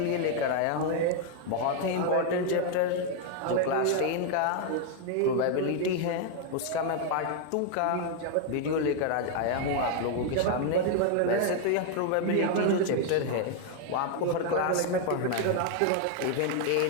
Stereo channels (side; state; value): both; different; correlation 0.00